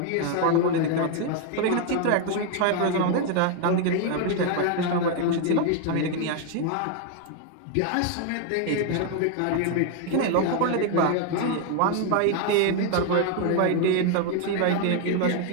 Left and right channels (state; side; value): different; both; correlation 0.01